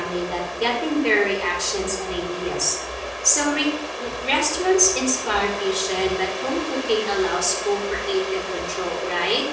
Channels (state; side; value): identical; both; correlation 1.00